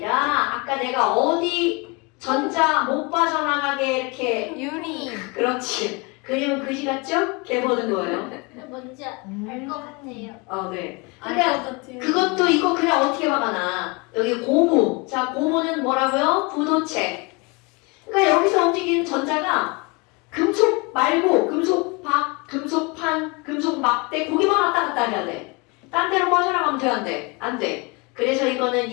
아까 내가 어디 전자 못 빠져나가게 이렇게 유리. 그렇지. 그림은 그지 같죠? 걔 보는 거예요. 뭔지 알 것 같아요. 네. 알것 그러니까 같아요. 그것도 이거 그냥 어떻게 막아놔. 여기 고무. 자, 고무는 뭐라고요? 부도체. 그러니까 여기서 움직이는 전자가 금속 말고 금속박, 금속판, 금속 막대 고기만 왔다 갔다 해야 돼. 딴 데로 빠져나가면 돼, 안 돼? 안 돼. 그래서 이거는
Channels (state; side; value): quieter; right; 28.5 dB